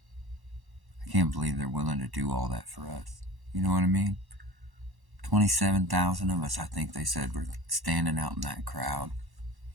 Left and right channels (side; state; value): left; late; 1.1 ms